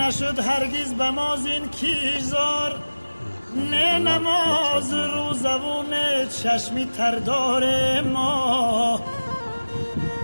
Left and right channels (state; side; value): inverted; both; correlation -1.00